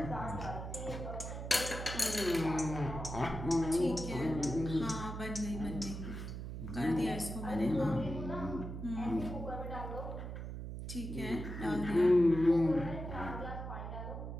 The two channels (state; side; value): noise; right; hum, 7 dB below the sound